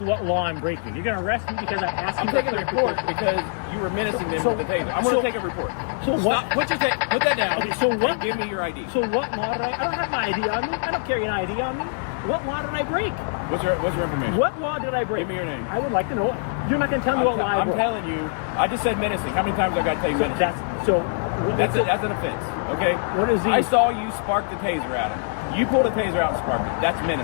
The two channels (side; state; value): right; silent; 63 dB below the other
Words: law I'm breaking. You're going to arrest me because I'm asking. I'm taking a report because you were menacing them with the taser. I'm going to take a report. So what? Put that down. Okay, so what? Give me your ID. So what law did I don't have my ID on me. I don't carry an ID on me. What law did I break? What's your information? What law did I break? Give me your name. I would like to know. You're not going to tell me what law I broke. I'm telling you. I just said menacing. How many times I got to tell you menacing? That's an offense. Okay. What is? I saw you spark the taser at him. You pulled a taser out and sparked it. That's